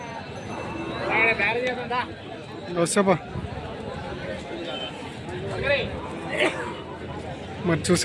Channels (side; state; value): both; identical; correlation 1.00